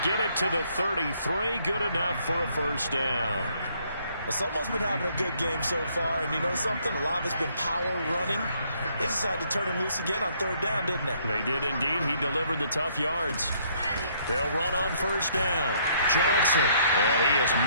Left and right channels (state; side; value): inverted; both; correlation -0.66